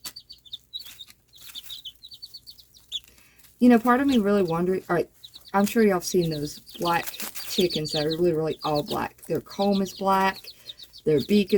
You know, part of me really wondering, all right, I'm sure y'all have seen those black chickens that are literally all black. Their comb is black, their beak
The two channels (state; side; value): identical; both; correlation 1.00